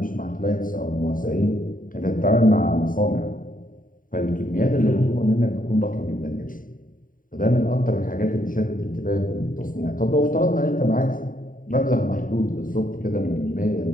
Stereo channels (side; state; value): right; late; 0.39 ms